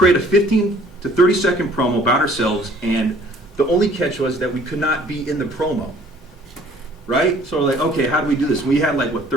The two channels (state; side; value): normal; both; correlation 0.56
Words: a 15 to 30-second promo about ourselves, and the only catch was that we could not be in the promo. Right? So we're like, okay, how do we do this? We had like, what,